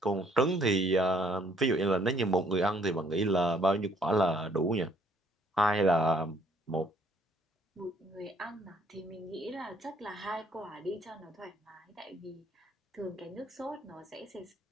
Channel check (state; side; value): normal; both; correlation 0.64